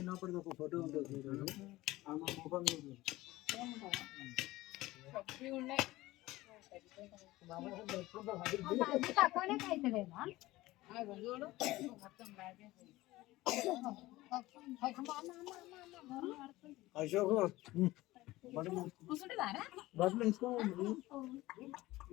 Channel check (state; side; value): quieter; right; 18.3 dB